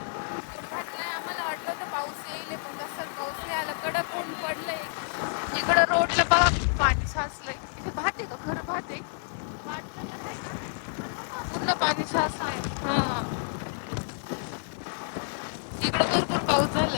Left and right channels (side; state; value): right; silent; 58 dB below the other